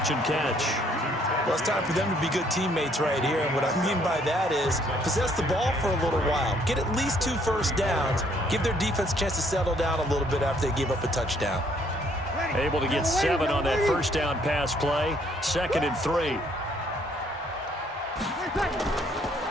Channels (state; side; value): normal; both; correlation 0.65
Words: and catch. Well, it's time for them to be good teammates right here, and what I mean by that is possess the ball for a little while. Get at least 2 first downs. Give their defense a chance to settle down a little bit after they give up a touchdown. Able to get 7 on that first down pass play. 2nd and 3.